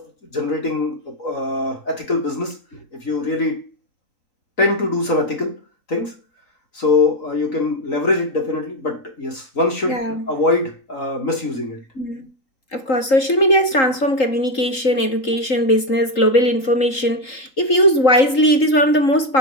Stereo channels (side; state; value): right; late; 3.8 ms